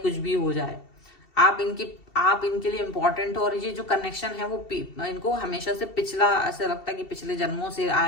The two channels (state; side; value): late; right; 2.7 ms